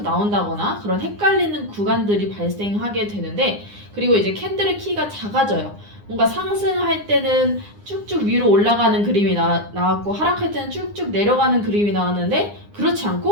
나온다거나 그런 헷갈리는 구간들이 발생하게 되는데 그리고 이제 캔들의 키가 작아져요. 뭔가 상승할 때는 쭉쭉 위로 올라가는 그림이 나왔고 하락할 때는 쭉쭉 내려가는 그림이 나왔는데 그렇지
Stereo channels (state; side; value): late; left; 9.8 ms